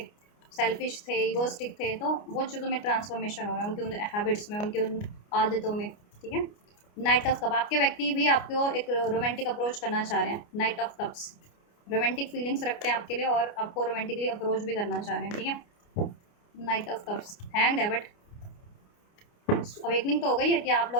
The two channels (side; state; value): right; late; 29 ms